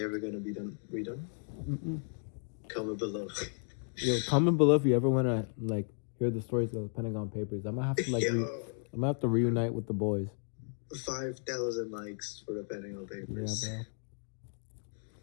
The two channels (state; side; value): silent; right; 55 dB below the other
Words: ever gonna be redone? Comment below. Yo, comment below if you ever want to like hear the stories of the Pentagon Papers. I might have to I might have to reunite with the boys. 5,000 likes for the Pentagon Papers. Yeah,